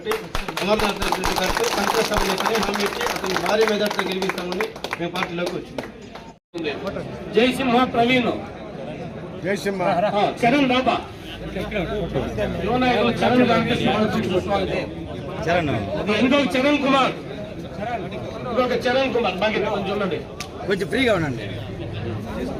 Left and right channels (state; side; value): identical; both; correlation 1.00